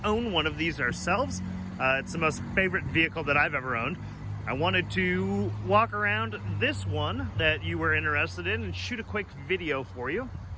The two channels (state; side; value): identical; both; correlation 1.00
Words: own one of these ourselves. It's the most favorite vehicle that I've ever owned. I wanted to walk around this one that you were interested in and shoot a quick video for you.